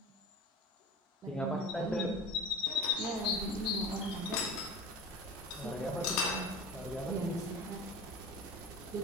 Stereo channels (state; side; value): normal; both; correlation 0.35